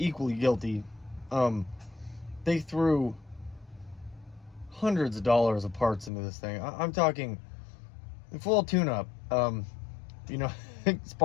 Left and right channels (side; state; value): right; drops out; at 6.1 s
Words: equally guilty. They threw hundreds of dollars of parts into this thing. I'm talking full tune-up. You know,